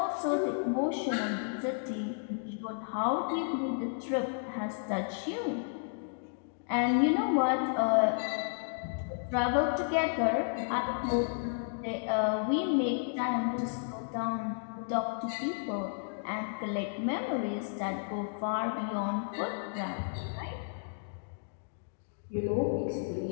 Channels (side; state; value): right; silent; digital silence